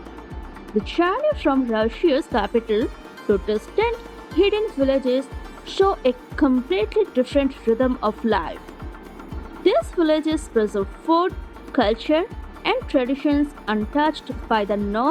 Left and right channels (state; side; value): identical; both; correlation 1.00